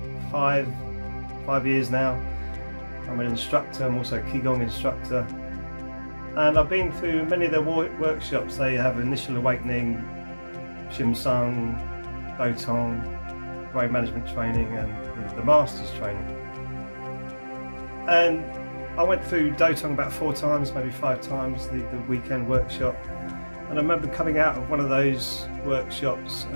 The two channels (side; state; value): both; inverted; correlation -1.00